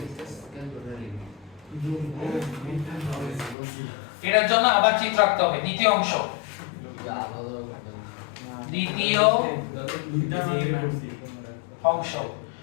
এটার জন্য আবার চিত্র আঁকতে হবে। দ্বিতীয় অংশ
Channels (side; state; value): right; drops out; at 3.6 s